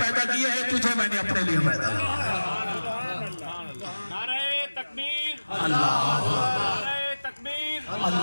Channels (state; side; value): inverted; both; correlation -1.00